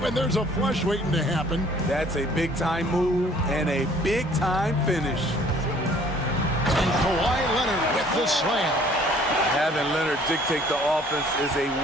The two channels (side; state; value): both; normal; correlation 0.56